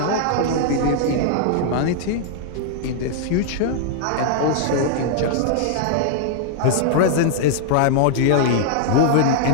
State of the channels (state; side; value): different; both; correlation -0.01